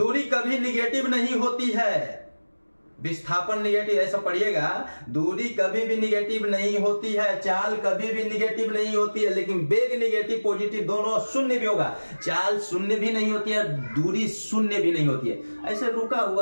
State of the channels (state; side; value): inverted; both; correlation -1.00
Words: कभी निगेटिव नहीं होती है। विस्थापन निगेटिव, ऐसा पढ़िएगा, दूरी कभी भी निगेटिव नहीं होती है, चाल कभी भी निगेटिव नहीं होती है, लेकिन वेग निगेटिव पॉजिटिव दोनों शून्य भी होगा। चाल शून्य भी नहीं होती है, दूरी शून्य भी नहीं होती है। ऐसे रुका